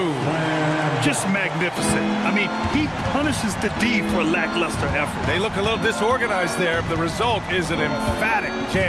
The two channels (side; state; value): both; identical; correlation 1.00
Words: Just magnificent. I mean, he punishes the D for lackluster effort. They look a little disorganized there. The result is an emphatic